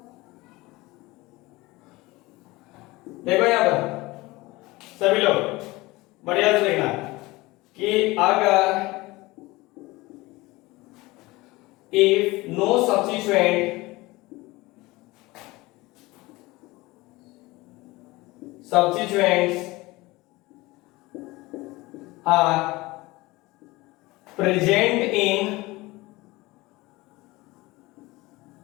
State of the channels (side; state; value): right; quieter; 21.1 dB